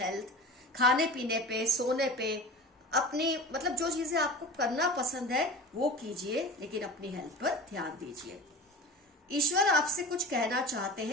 खाने पीने पे, सोने पे, अपनी जो चीजें आपको करना पसंद है वो कीजिए, लेकिन अपनी हेल्थ पर ध्यान दीजिए। ईश्वर आपसे कुछ कहना चाहते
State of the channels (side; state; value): both; normal; correlation 0.34